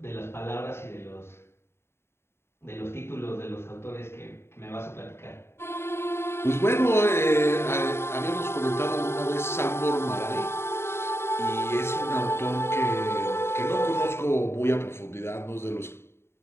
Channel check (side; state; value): right; late; 0.12 ms